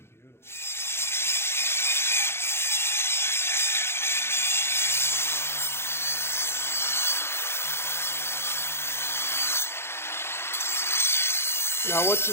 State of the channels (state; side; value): late; right; 0.12 ms